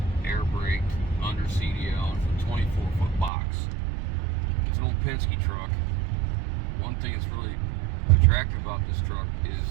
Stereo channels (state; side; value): drops out; left; at 3.3 s